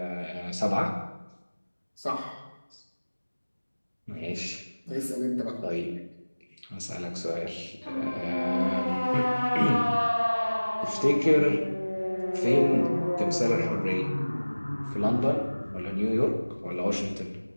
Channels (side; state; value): both; inverted; correlation -1.00